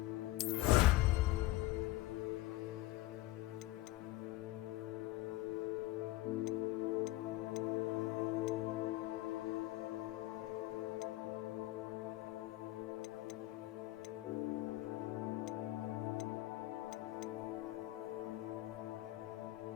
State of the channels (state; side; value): quieter; right; 17.2 dB